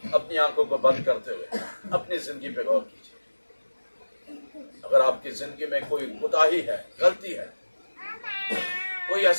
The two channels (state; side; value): inverted; both; correlation -1.00